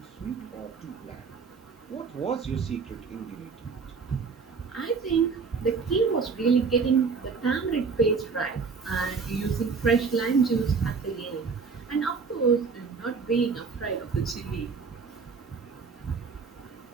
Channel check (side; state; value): left; quieter; 5.2 dB